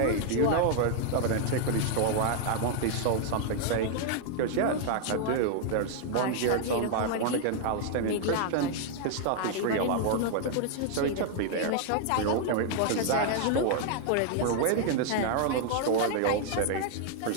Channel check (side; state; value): both; different; correlation 0.00